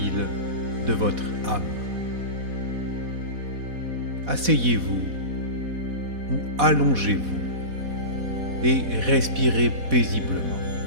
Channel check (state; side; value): late; left; 4.1 ms